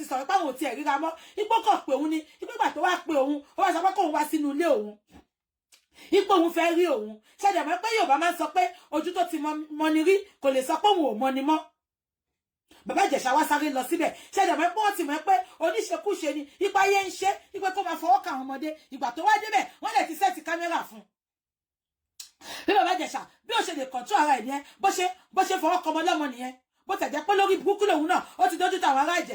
sọ̀rọ̀ pé àwọn ò tiẹ̀ ríra mọ́ ipò kàn pé òun ni ipò ìgbà tó wá pé òun ó wá sọ pé kóun wá sínú ilé òun ipò òun fẹ́ rí òun ṣẹ̀dẹ̀ mọ́ pé Yorùbá máa ń sọ pé ojú tó ti mọ ni rí kò lè sọ pé òun ò mọ ni mọ́ bàbá Ìjẹ̀ṣà wá sáré lọ síbẹ̀ ṣẹ̀dẹ̀ mọ́ pé wọ́n ti mọ̀ pé oníṣekúṣe ni ipa yẹn ń ṣe ipe kó máa fọwọ́ kà àwọn ọmọdé ìgbà tó wá débẹ̀ wọ́n lè ti sẹ́ẹ̀tì kámẹ́rà fún bí bàbá Ìjẹ̀ṣà bí ó ṣe lè kọ̀ntú ara ẹ̀ nìyẹn bó ṣe fọwọ́ kọmọ lọ́mọ nìyẹn bó tẹ̀jẹ́ pé lórí burúkú lòun náà ó ti dójú tàwọn ará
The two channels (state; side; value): identical; both; correlation 1.00